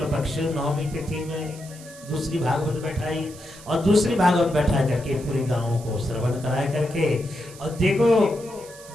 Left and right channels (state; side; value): noise; right; hiss, 19 dB below the sound